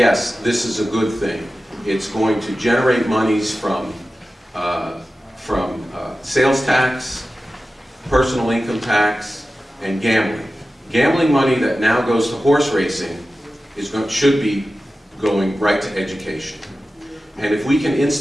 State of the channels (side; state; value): both; normal; correlation 0.95